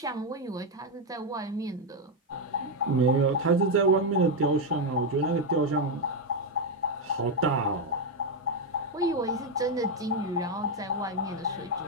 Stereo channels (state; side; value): normal; both; correlation 0.04